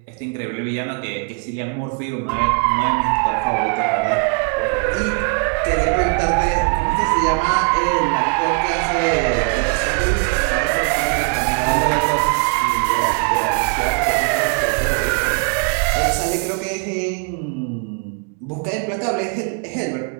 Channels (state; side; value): quieter; left; 35.3 dB